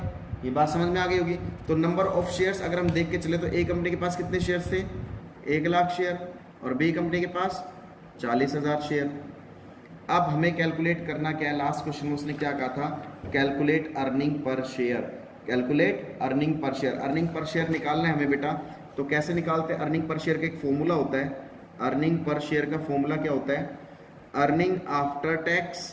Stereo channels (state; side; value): identical; both; correlation 1.00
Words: ये बात समझ में आ गई होगी। तो नंबर ऑफ शेयर्स अगर हम देख के चले तो ए कंपनी के पास कितने शेयर्स थे, 1 लाख शेयर, और बी कंपनी के पास 40,000 शेयर। अब हमें कैलकुलेट करना क्या है, लास्ट क्वेश्चन में उसने क्या कहा था, calculate earning per share, calculate earning per share. Earning per share निकालना है हमें बेटा, तो कैसे निकालते हैं, अर्निंग पर शेयर का एक फॉर्मूला होता है। अर्निंग पर शेयर का फॉर्मूला क्या होता है, अर्निंग आफ्टर